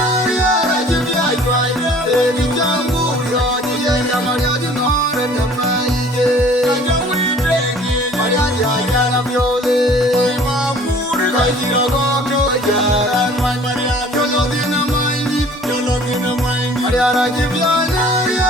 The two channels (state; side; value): normal; both; correlation 0.51